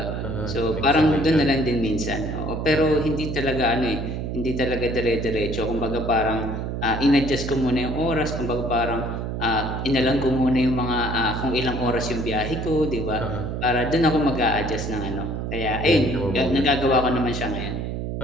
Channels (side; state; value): right; noise; hum, 4 dB below the sound